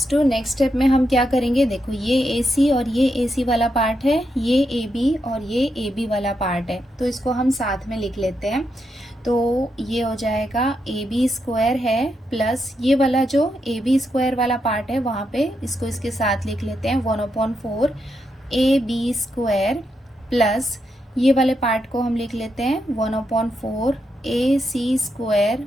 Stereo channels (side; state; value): both; normal; correlation 0.83